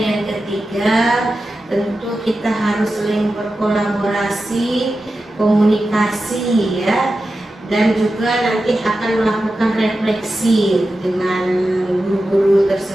ketiga, tentu kita harus saling berkolaborasi, komunikasi ya, dan juga nanti akan melakukan refleksi dengan guru-guru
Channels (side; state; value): both; normal; correlation 0.92